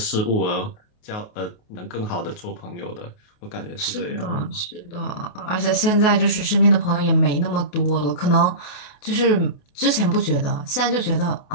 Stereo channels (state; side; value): late; right; 28 ms